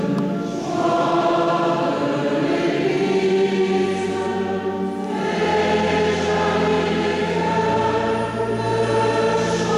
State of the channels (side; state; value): both; identical; correlation 1.00